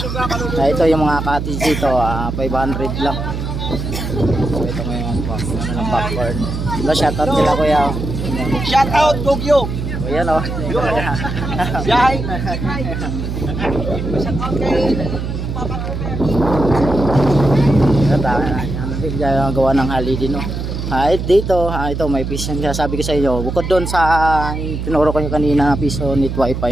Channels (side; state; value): right; noise; hum, 4 dB below the sound